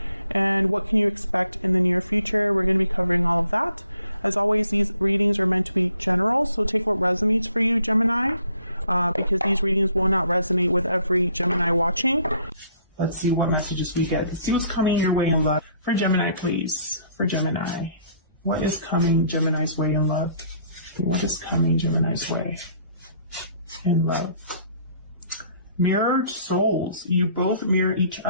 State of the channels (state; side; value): inverted; both; correlation -0.62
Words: and what can you expect in the near future? We're going to be covering all of that. As always, these readings are meant to be general, so take what resonates for you, Gemini, because these readings will not resonate with every Gemini watching. Let's see what messages we get. See what's coming your way in love. For Gemini, please. For Gemini. What is coming Gemini's way in love? What is coming Gemini's way in love? Mirrored souls. You both mirror each